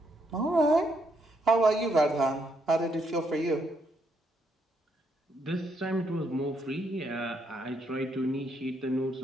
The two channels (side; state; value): both; normal; correlation 0.75